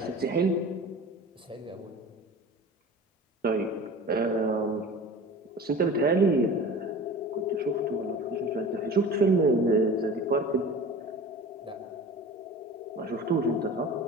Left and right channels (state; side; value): normal; both; correlation 0.38